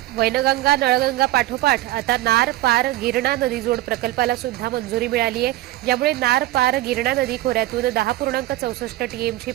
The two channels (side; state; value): left; quieter; 16.1 dB